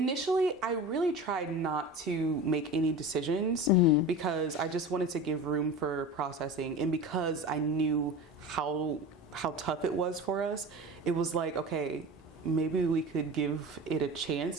I really tried not to make any decisions, because I just wanted to give room for processing, and because I knew how tough it was for us. It was like, okay, maybe we could give it a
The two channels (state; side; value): normal; both; correlation 0.32